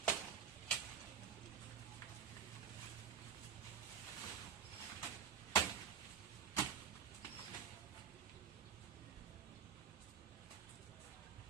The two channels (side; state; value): left; quieter; 7.9 dB